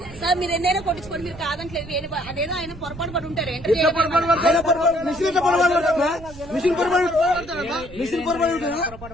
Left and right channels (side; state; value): right; noise; rumble, 17 dB below the sound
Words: మీరు ఎన్నైనా కొట్టించుకోండి, మీరు కాదంటలేదు. అదేదో ఆయన పొరపాటు పడి ఉంటారు.